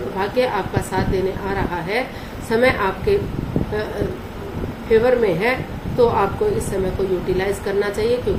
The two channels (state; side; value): identical; both; correlation 1.00